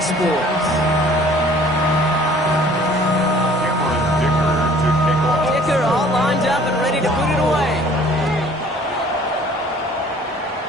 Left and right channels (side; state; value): both; normal; correlation 0.53